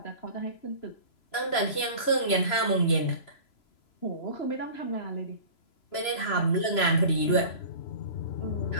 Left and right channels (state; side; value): late; right; 3.0 ms